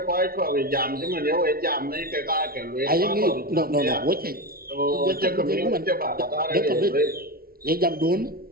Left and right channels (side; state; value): left; late; 0.43 ms